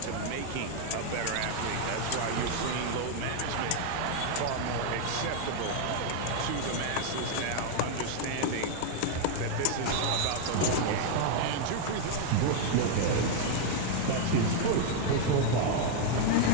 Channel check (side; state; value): both; different; correlation 0.00